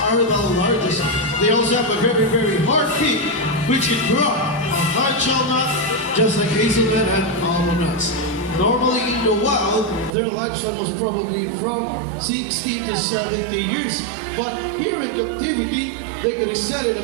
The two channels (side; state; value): left; drops out; at 10.1 s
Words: are the largest? They also have a very, very hard beak, which can grow a hard shell nut, just like hazelnut and almond nuts. Normally in the wild, their lifespan was probably from 60 to 70 years, but here in captivity, they could extend it